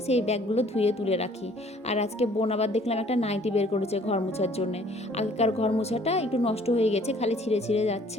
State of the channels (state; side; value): normal; both; correlation 0.57